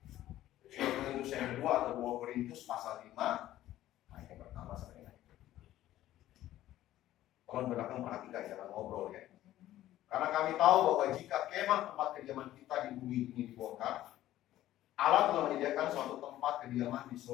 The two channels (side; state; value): right; quieter; 13.9 dB